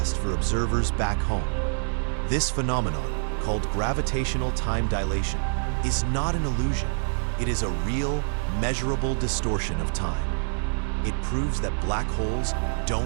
for observers back home. This phenomenon, called gravitational time dilation, is not an illusion. It is a real, measurable distortion of time. It proves that black holes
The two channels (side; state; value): left; silent; 58 dB below the other